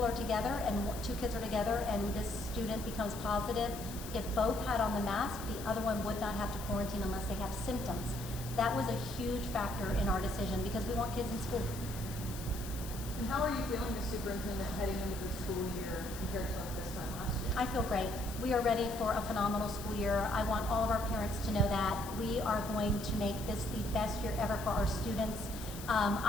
are together and two kids are together and this student becomes positive, if both had on the mask, the other one would not have to quarantine unless they have symptoms. That was a huge factor in our decision because we want kids in school. And how are you feeling as superintendent heading into the school year compared to this time last year? I feel great. We are ready for a phenomenal school year. I want all of our parents to know that we are going to make this the best year ever for our students.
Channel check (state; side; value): noise; left; hiss, 12 dB below the sound